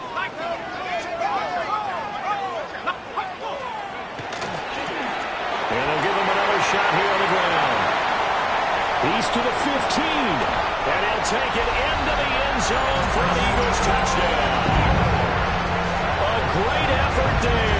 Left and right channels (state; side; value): identical; both; correlation 1.00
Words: Shot here on the ground. He's to the 15. And he'll take it into the end zone for an Eagles touchdown. A great effort